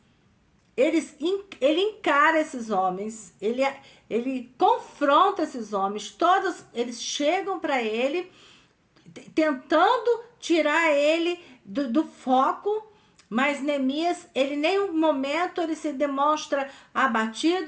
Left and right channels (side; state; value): both; identical; correlation 1.00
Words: Ele encara esses homens, ele confronta esses homens, todos eles chegam para ele, tentando tirar ele do foco. Mas Neemias, ele nenhum momento ele se demonstra